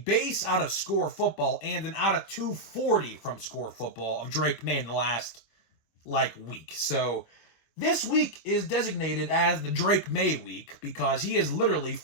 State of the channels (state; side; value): late; right; 26 ms